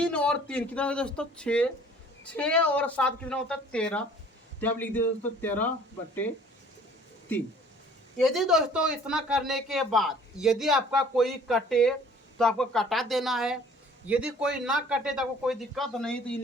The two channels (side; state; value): both; normal; correlation 0.53